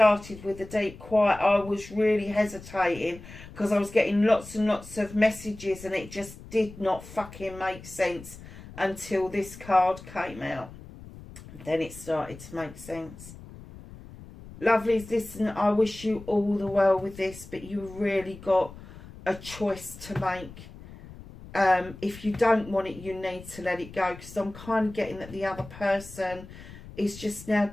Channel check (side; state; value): left; noise; rumble, 16 dB below the sound